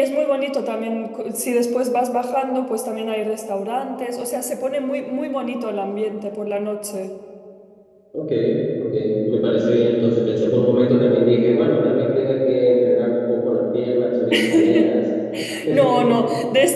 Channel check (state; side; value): identical; both; correlation 1.00